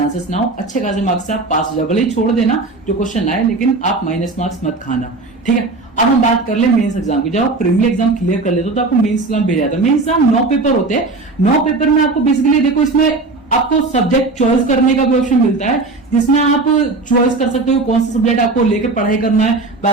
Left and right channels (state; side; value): quieter; left; 3.4 dB